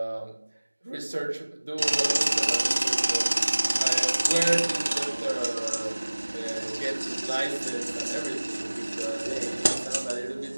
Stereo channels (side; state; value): both; inverted; correlation -1.00